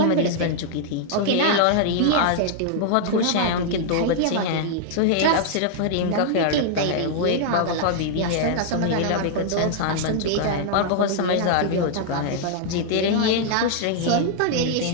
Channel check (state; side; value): different; both; correlation -0.01